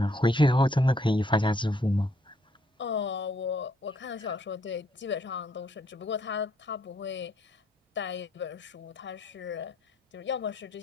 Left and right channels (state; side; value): normal; both; correlation 0.69